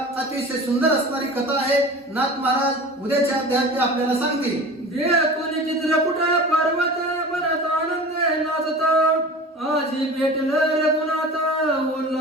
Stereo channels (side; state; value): both; normal; correlation 0.37